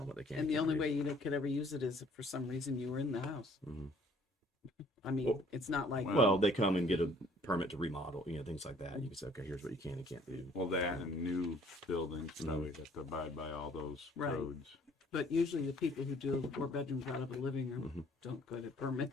them what they can. And the can't only do. way you could ever use it is if for some reason you were in the house. I mean, Well- it's not like Well, they come and get a permit to remodel, things like that. You can say, okay, here's what you can and can't do. Well, that and new buildings probably have to abide by all those Right. codes. But usually the people who do 4 bedrooms out of a living room don't go to permit.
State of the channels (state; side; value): normal; both; correlation 0.58